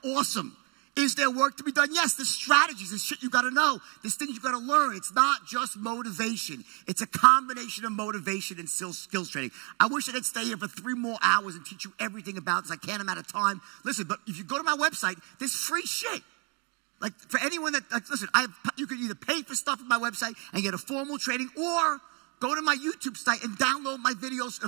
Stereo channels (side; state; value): left; quieter; 33.8 dB